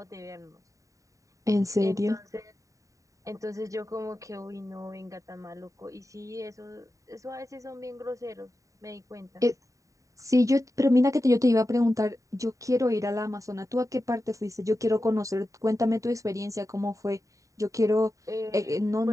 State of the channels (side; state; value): left; late; 0.16 ms